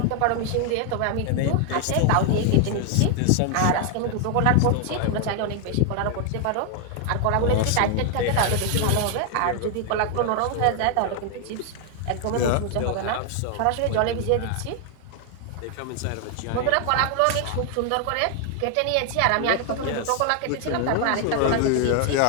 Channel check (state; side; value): different; both; correlation 0.00